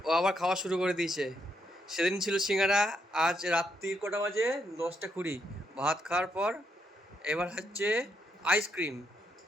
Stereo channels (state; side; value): normal; both; correlation 0.77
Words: ও আবার খাওয়া শুরু করে দিয়েছে। সেদিন ছিল সিঙ্গারা, আজ রাত্রির কটা বাজে? 10টা 20। ভাত খাওয়ার পর এবার হচ্ছে আইসক্রিম,